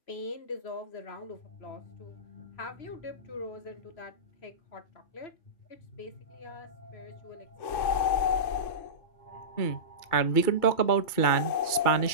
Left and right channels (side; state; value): right; late; 2.3 ms